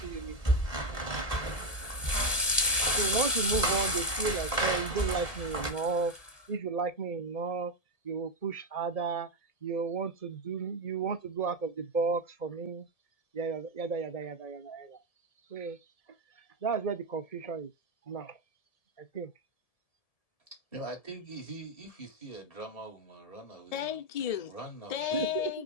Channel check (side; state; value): right; late; 1.7 ms